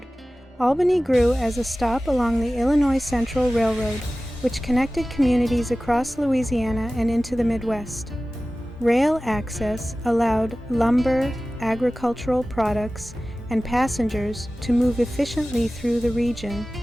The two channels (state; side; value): normal; both; correlation 0.96